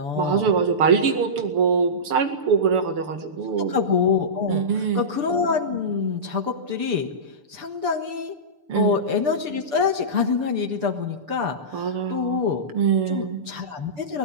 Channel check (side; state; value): left; late; 6.8 ms